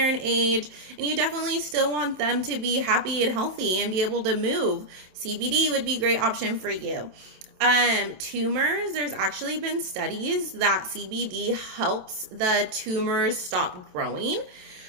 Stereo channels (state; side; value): late; left; 27 ms